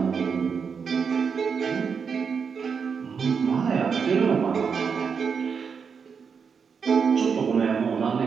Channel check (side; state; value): left; quieter; 6.1 dB